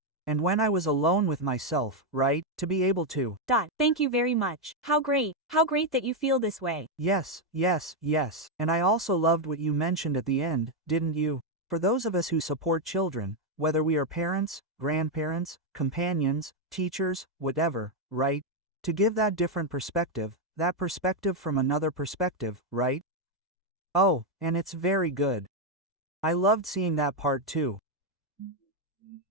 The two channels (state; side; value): normal; both; correlation 0.02